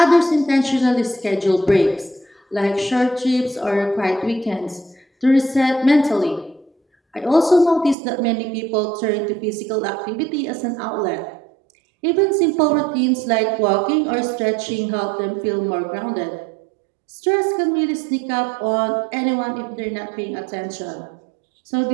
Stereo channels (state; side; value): drops out; left; at 8.0 s